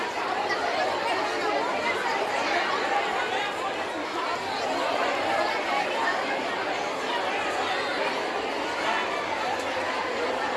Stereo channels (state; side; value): identical; both; correlation 1.00